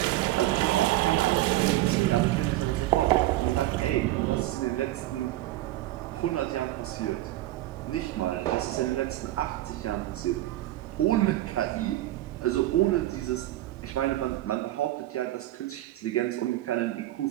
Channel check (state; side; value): quieter; left; 15.9 dB